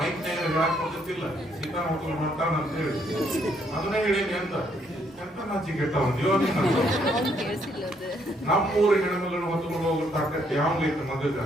ಮೈಕ್ ಹೇಳಕ್ ಹೋಗುತ್ತಿಲ್ಲ, ಸೀತಾನ ಹೊತ್ಕೊಂಡು ಮಾಡ್ತಾನ ಅಂತ ಹೇಳಿ ಅದನ್ನೇ ಹೇಳೇನಿ ಅಂತ ಎಂತ ನಾಚಿಗೆ ಕೆಟ್ಟವನ್ಯೋ ನೀನು. ನಮ್ಮೂರ ಹೆಣ್ಮಗಳನ್ನ ಹೊತ್ಕೊಂಡು ಹೋಗೋ ತಾಕತ್ ಯಾವ್ದೈತೆ ಮಗಗ?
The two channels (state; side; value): normal; both; correlation 0.71